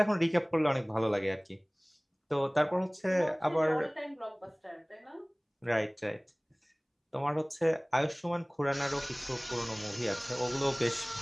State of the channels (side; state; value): both; identical; correlation 1.00